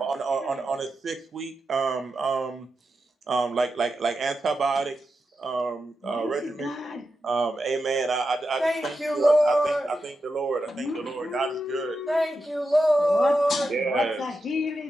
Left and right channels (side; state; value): both; normal; correlation 0.88